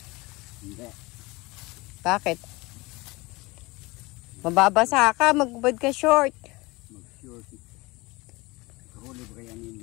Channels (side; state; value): right; quieter; 23.1 dB